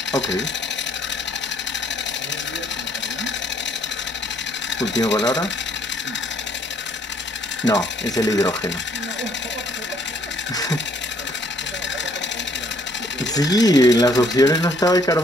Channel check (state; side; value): normal; both; correlation 0.65